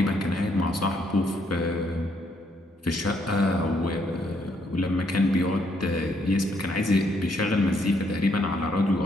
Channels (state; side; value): normal; both; correlation 0.72